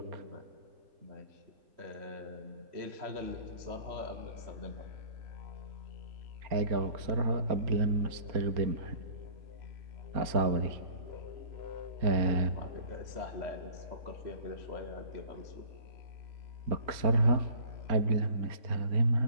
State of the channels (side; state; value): left; late; 4.3 ms